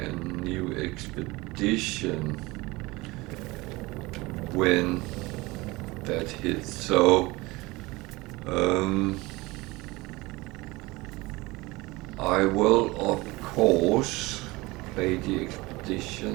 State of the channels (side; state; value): left; quieter; 22.1 dB